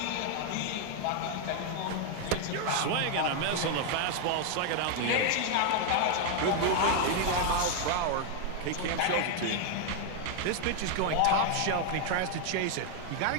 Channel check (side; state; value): both; different; correlation 0.00